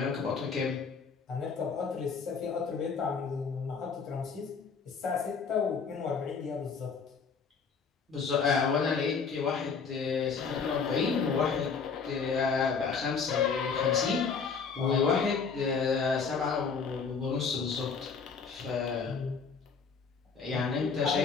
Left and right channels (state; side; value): quieter; right; 5.5 dB